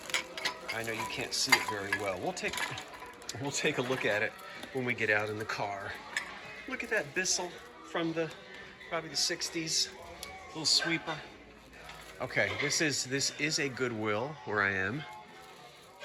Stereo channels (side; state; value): both; identical; correlation 1.00